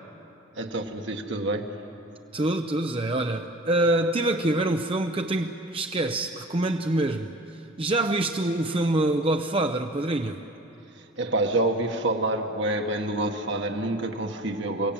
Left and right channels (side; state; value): both; normal; correlation 0.40